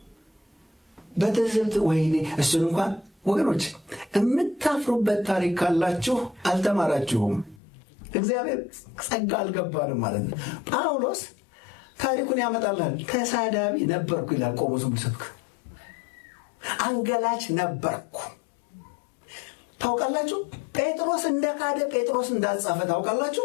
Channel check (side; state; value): right; drops out; at 7.6 s